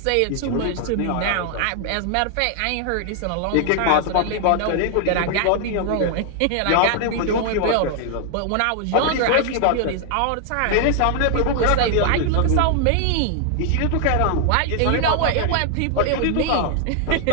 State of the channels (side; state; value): both; different; correlation 0.00